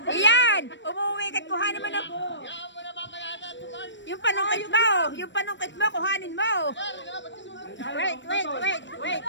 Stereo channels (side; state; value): right; late; 0.53 ms